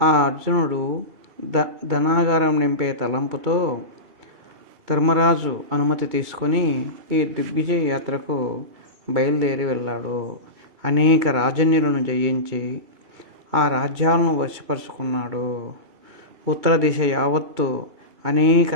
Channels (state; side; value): late; left; 2.3 ms